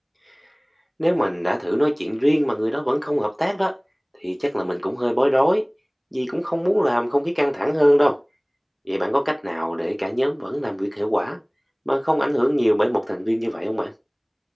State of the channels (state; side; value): identical; both; correlation 1.00